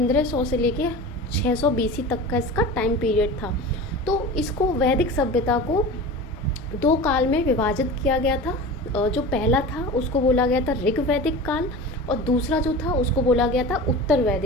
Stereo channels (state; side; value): normal; both; correlation 0.33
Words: लेके 600 बीसी तक का इसका टाइम पीरियड था। तो इसको वैदिक सभ्यता को दो काल में विभाजित किया गया था। जो पहला था उसको बोला गया था ऋग वैदिक काल और दूसरा जो था उसको बोला गया था उत्तर